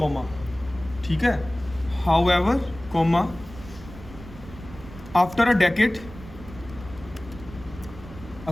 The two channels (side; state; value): right; noise; rumble, 16 dB below the sound